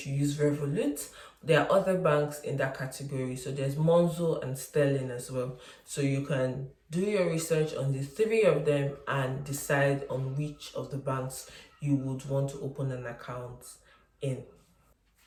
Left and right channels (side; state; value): both; identical; correlation 1.00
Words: use Revolut. There are other banks in that category. So there's Monzo and Sterling as well. So you can do your research on the three of them and decide on which of the banks you would want to open an account in.